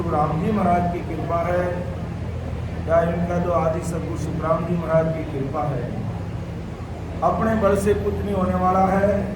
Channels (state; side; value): identical; both; correlation 1.00